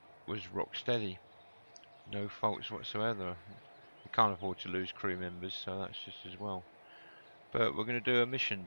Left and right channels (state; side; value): inverted; both; correlation -1.00